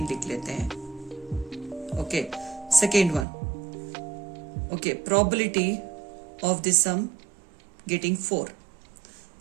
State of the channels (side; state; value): left; drops out; at 3.2 s